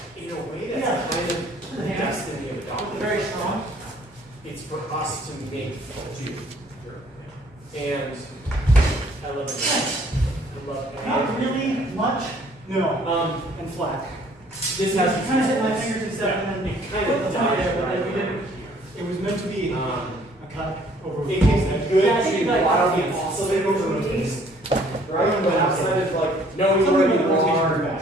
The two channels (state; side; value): normal; both; correlation 0.59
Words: in a way that's kind of the destiny of a document. Very strong. It's for us to make do. And I love it. I love it. Not really much. No. And flat. This has kind of hit my fingers and stuff, and then it kind of dies but then we right didn't. It was meant to be a cut over. It can be good Yeah, I think to like watch the the oscillator oscillator movies. right? But outside of like knowing Something where with you rotation are,